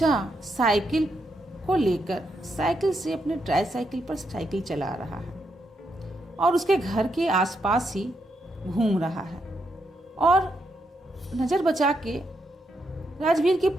साइकिल को लेकर साइकिल से अपने ट्राईसाइकिल पर साइकिल चला रहा है और उसके घर के आसपास ही घूम रहा है, और नजर बचा के राजवीर की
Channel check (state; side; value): normal; both; correlation 0.80